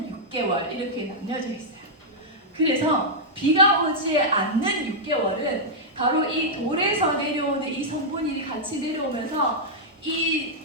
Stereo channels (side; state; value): both; normal; correlation -0.07